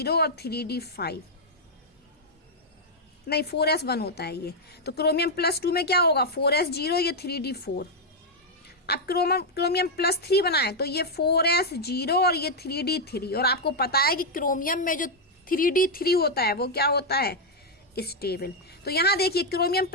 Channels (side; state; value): both; normal; correlation -0.01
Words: और 3d5, नहीं 4s1 होता है ये, तो क्रोमियम +2 में क्या होगा 4s0, ये 3d4। अब क्रोमियम +3 बनाए तो ये 4s0 और ये 3d3, और आपको पता है कि क्रोमियम में जो 3d3 होता है वो क्या होता है, स्टेबल। तो यहाँ देखिए क्रोमियम